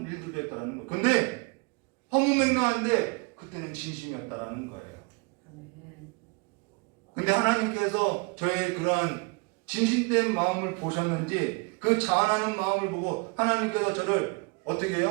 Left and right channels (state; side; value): quieter; left; 30.9 dB